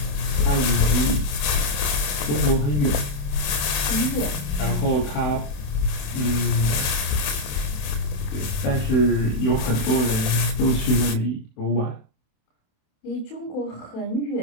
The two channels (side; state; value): right; late; 28 ms